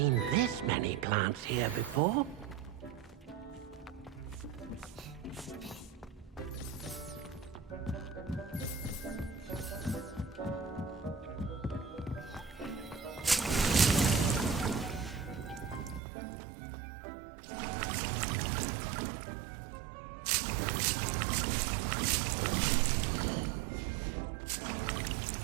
this many plants here before.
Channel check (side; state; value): left; drops out; at 16.0 s